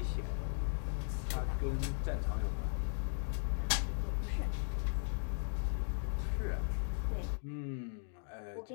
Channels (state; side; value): silent; right; digital silence